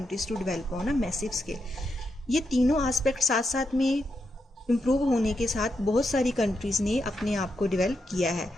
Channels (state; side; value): normal; both; correlation 0.84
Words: to develop on a massive scale. ये तीनों एस्पेक्ट साथ साथ में इम्प्रूव होने के साथ बहुत सारी कंट्रीज़ ने अपने आप को डेवलप किया है।